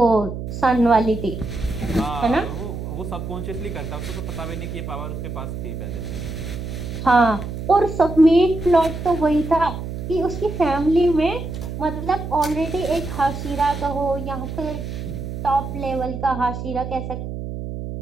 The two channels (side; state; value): right; noise; hum, 7 dB below the sound